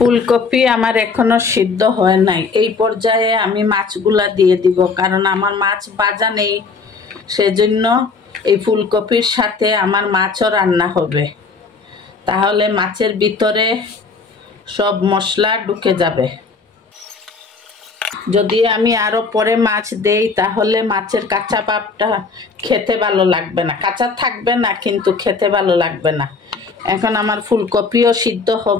আমার এখনো সিদ্ধ হয় নাই। এই পর্যায়ে আমি মাছগুলা দিয়ে দিব, কারণ আমার মাছ ভাজা নেই। সেজন্য এই ফুলকপির সাথে আমার মাছও রান্না হবে। তাহলে মাছের ভিতরে সব মশলা ঢুকে যাবে। যদি আমি আরো পরে মাছ দেই তাহলে মাছের কাঁচা ভাবটা খেতে ভালো লাগবে না। কাঁচা থাকবে না, কিন্তু খেতে ভালো লাগবে না। এখন আমার ফুলকপিও সিদ্ধ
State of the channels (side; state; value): right; quieter; 4.5 dB